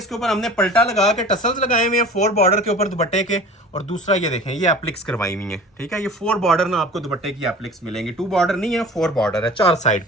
ऊपर हमने पलटा लगा के टसल्स लगाए हुए हैं 4 बॉर्डर के ऊपर दुपट्टे के, और दूसरा ये देखें ये एप्लिक्स करवाई हुई है। ठीक है, ये 4 बॉर्डर ना आपको दुपट्टे की एप्लिक्स मिलेंगी। 2 बॉर्डर नहीं है, 4 बॉर्डर है 4 साइड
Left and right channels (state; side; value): normal; both; correlation 0.41